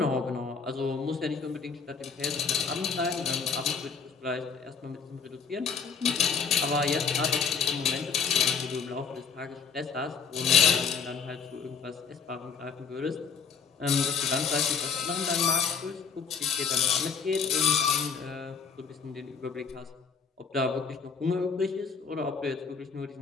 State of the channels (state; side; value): quieter; right; 6.0 dB